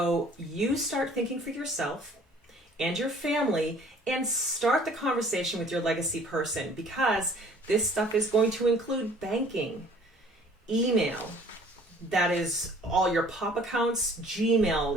you start thinking for yourself and your family and start the conversation with your legacy person, because this stuff is going to include banking, email, that is all your pop accounts,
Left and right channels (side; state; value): both; normal; correlation 0.53